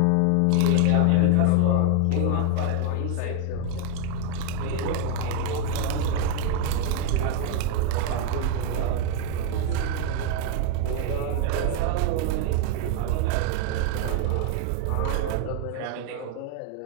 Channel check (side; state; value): both; different; correlation 0.00